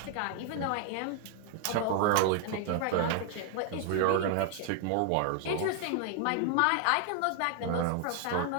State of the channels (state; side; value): different; both; correlation 0.00